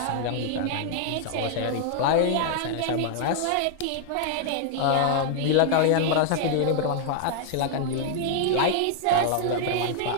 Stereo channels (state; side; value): different; both; correlation 0.00